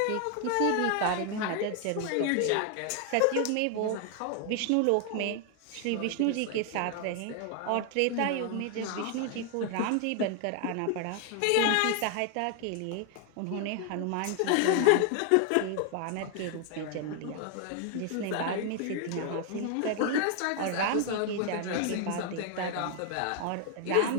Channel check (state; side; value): different; both; correlation 0.00